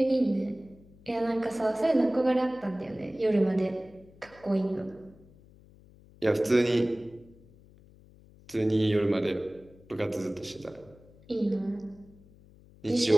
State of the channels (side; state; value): left; noise; hum, 25 dB below the sound